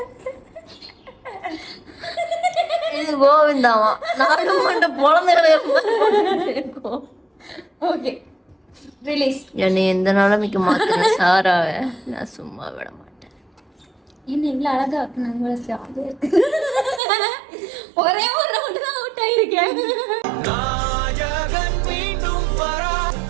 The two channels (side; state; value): left; drops out; at 17.0 s